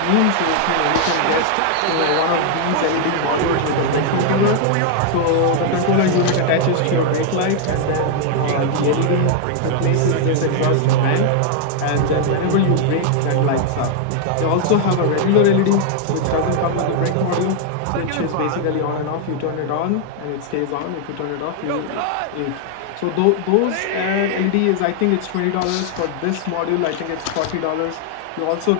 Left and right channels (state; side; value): different; both; correlation 0.00